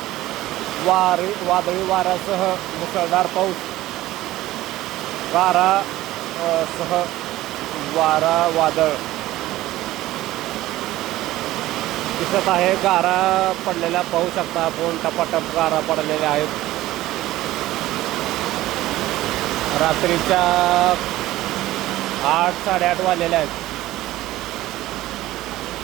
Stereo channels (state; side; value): quieter; left; 16.0 dB